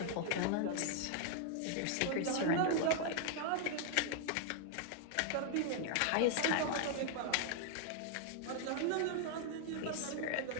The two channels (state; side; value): different; both; correlation 0.00